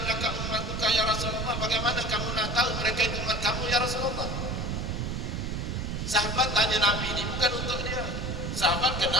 ummatuka ya Rasulullah? Bagaimana kamu nak tahu mereka itu umat kamu ya Rasulullah? Sahabat tanya Nabi, ini bukan untuk dia. Sahabat kenal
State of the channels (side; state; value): right; noise; rumble, 2 dB below the sound